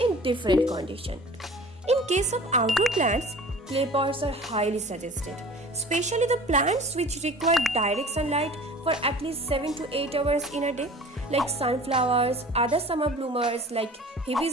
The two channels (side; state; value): both; normal; correlation 0.43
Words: in different conditions. In case of outdoor plants, clay pots are highly suggested, especially the plants which require direct sunlight for at least 7 to 8 hours in a day, like sunflowers, other summer bloomers like